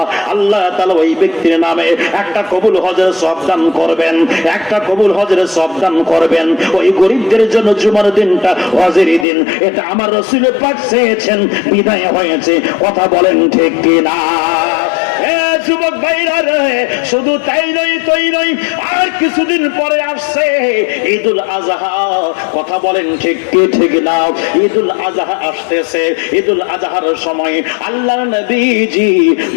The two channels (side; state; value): right; drops out; at 9.2 s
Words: আল্লাহ তাআলা ওই ব্যক্তির নামে একটা কবুল হজের সওয়াব দান করবেন, একটা কবুল হজের সওয়াব দান করবেন। ওই গরিবদের জন্য জুমার দিনটা হজের দিন, এটা আমার রাসূল পাক চেয়েছেন, বিদায় হয়েছে। কথা বলেন ঠিক কি না? যুবক ভাইরা রে, শুধু তাই নয়, আর কিছুদিন পরে আসছে ঈদুল আজহা। কথা বলেন ঠিক কি ঠিক না? ঈদুল আজহা আসতেছে। ঈদুল আজহার সময় আল্লাহর নবীজি